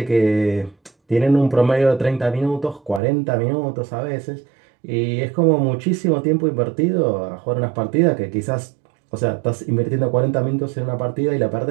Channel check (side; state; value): left; drops out; at 3.0 s